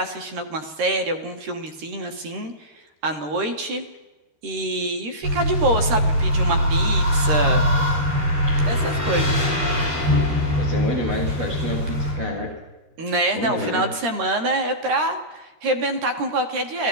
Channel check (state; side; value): late; left; 13 ms